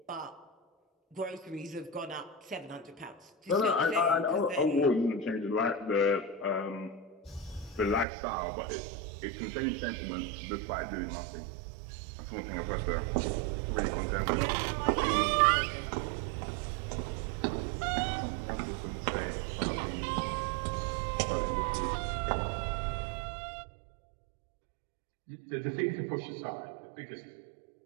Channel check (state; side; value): drops out; left; at 8.1 s